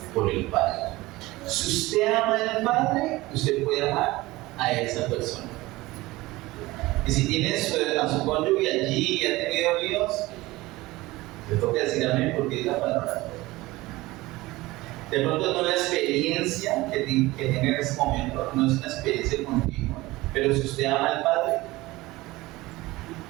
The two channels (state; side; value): quieter; left; 19.6 dB